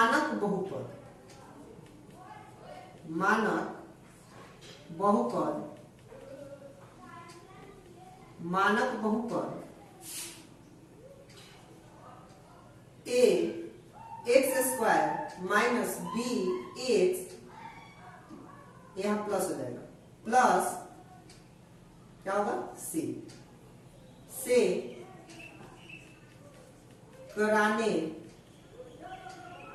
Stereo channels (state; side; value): identical; both; correlation 1.00